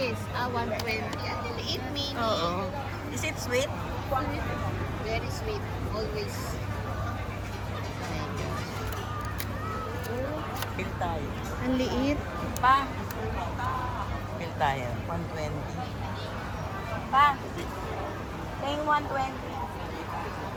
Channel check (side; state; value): both; identical; correlation 1.00